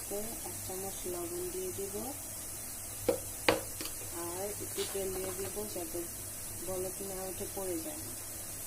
1 চামচ লবণ দিয়ে দিব আর একটু তেল দিয়ে দিব যাতে বলক না উঠে পড়ে যায়।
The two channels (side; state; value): both; identical; correlation 1.00